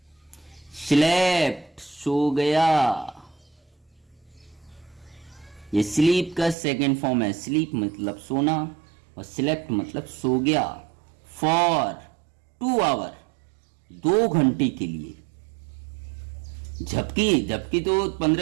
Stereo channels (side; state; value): left; drops out; at 6.6 s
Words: स्लेप्ट, सो गया। ये स्लीप का सेकंड फॉर्म है। स्लीप मतलब सोना और स्लेप्ट मतलब सो गया। फॉर 2 आवर, 2 घंटे के लिए। झपकी तो